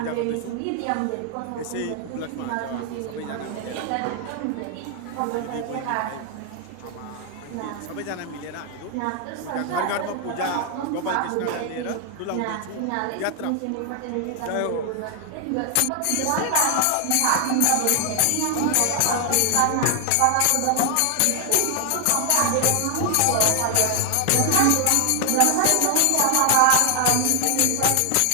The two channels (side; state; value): both; different; correlation 0.00